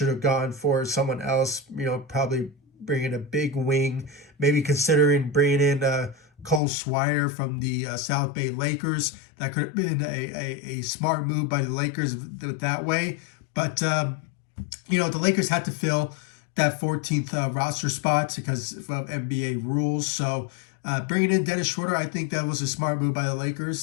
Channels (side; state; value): right; drops out; at 6.6 s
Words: have gone for someone else, probably bringing a big wing, maybe considering bringing in Cole Schroder from the South Bay Lakers. That could have been a smart move by the Lakers that way. But, the Lakers had to fill that 14th roster spot because of NBA rules. So bringing in Dennis Schröder, I think that was a smart move by the